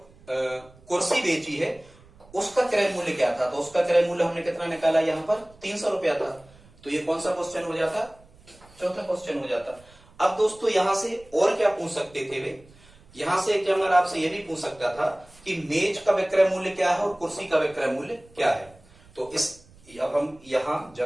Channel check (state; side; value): noise; right; rumble, 26 dB below the sound